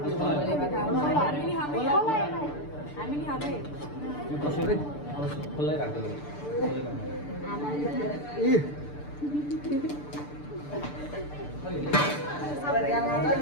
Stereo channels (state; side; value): late; right; 6.8 ms